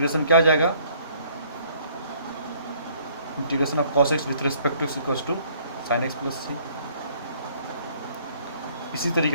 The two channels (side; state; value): both; inverted; correlation -0.60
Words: क्या आ जाएगा, integration of cos X with respect to X equals to sine X plus C. इसी